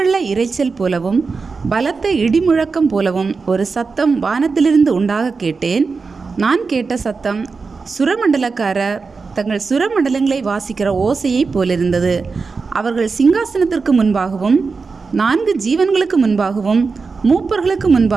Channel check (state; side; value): quieter; left; 4.6 dB